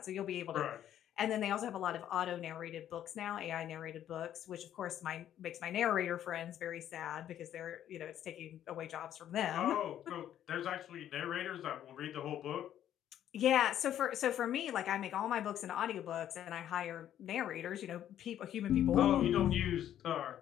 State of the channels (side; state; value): right; quieter; 11.0 dB